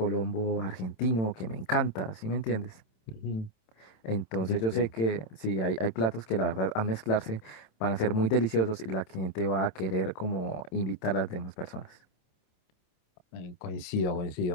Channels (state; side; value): late; right; 27 ms